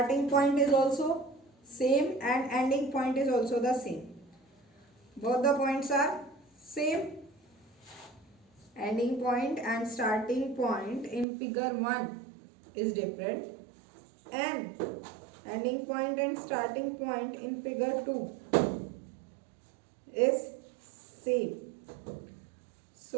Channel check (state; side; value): drops out; left; at 11.2 s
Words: point is also same and ending point is also the same. Both the points are same. Ending point and starting point in figure 1 is different, and ending point and starting point in figure 2 is same.